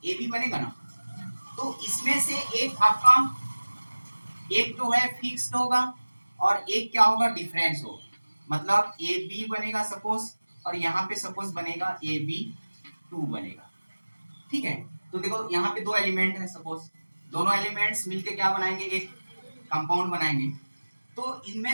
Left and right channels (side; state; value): both; inverted; correlation -1.00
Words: ए बी बनेगा ना, तो इसमें से एक आपका, एक जो है फिक्स्ड होगा और एक क्या होगा, डिफरेंस होगा, मतलब ए बी बनेगा सपोज, और यहाँ पे सपोज बनेगा ए बी 2 बनेगा। ठीक है, तो देखो यहाँ पे दो एलिमेंट है, सपोज दोनों एलिमेंट्स मिलके क्या बनाएंगे, एक कंपाउंड बनाएंगे। तो